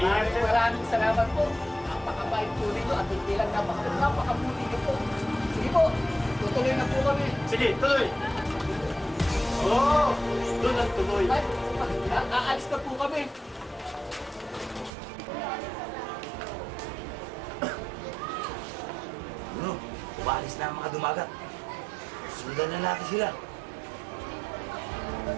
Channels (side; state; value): left; drops out; at 14.9 s